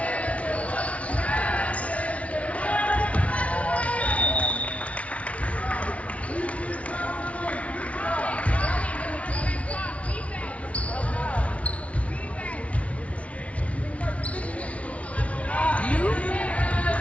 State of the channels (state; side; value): late; right; 0.064 ms